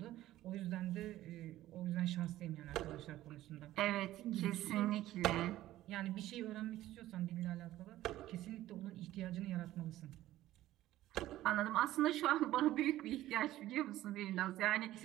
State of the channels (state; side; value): quieter; left; 14.8 dB